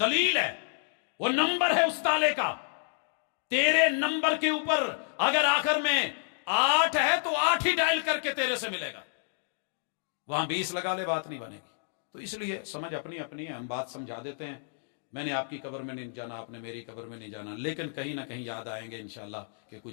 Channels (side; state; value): right; silent; digital silence